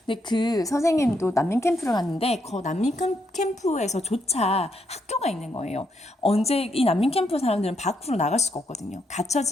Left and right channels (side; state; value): both; normal; correlation 0.77